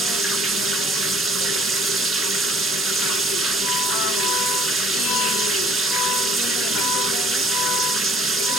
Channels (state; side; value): normal; both; correlation 0.58